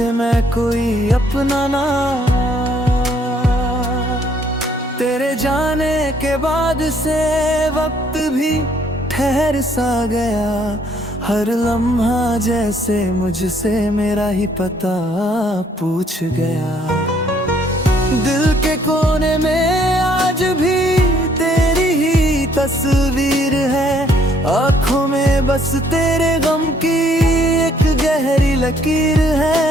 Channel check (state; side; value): normal; both; correlation 0.65